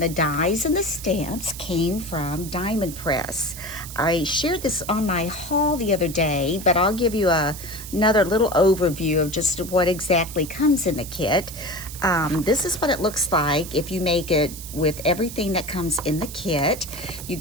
the dies and the stamps came from Diamond Press. I shared this on my haul the other day, but I'll give you another little overview of just what exactly comes in the kit. This is what it looks like if you make it with everything that comes in the kit. You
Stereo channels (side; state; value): right; noise; hiss, 12 dB below the sound